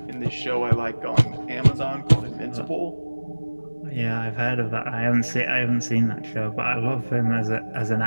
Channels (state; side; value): inverted; both; correlation -1.00